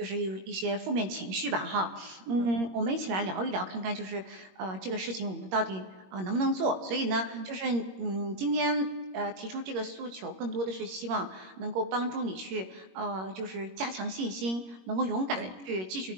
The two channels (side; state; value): left; late; 21 ms